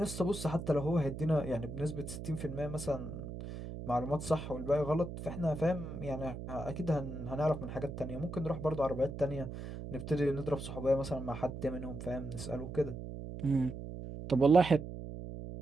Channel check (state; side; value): noise; right; hum, 8 dB below the sound